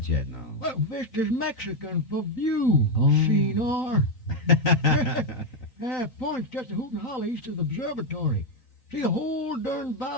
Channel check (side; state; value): right; late; 3.9 ms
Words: yet, no. Well, Vista's Mexican for view. Oh. See, Noir. Point's just a hoot and holler east of the observatory. See the whole darn